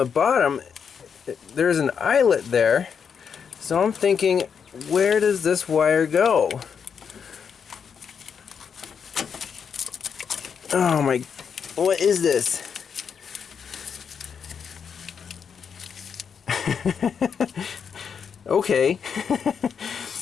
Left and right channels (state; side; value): quieter; right; 6.8 dB